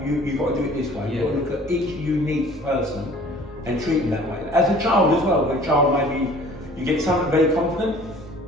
you've got to do it this way. You've got to look at each unique person and treat them that way. As a child as well, a child maybe you get someone very confident,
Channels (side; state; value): both; normal; correlation 0.50